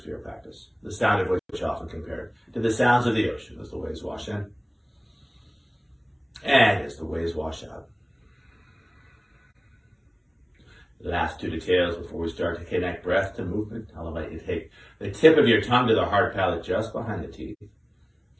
for your practice. The sound of which often compared to the sounds of the ocean as the waves wash in. And as the waves wash out. The last two details before we start to connect breath to movement. I'll invite you to take the tip of your tongue to the hard palate just behind the teeth,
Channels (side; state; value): both; identical; correlation 1.00